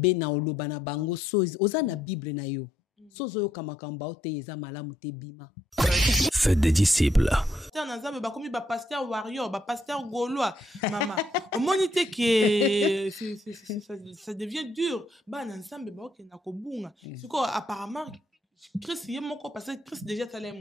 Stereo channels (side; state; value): both; normal; correlation 0.73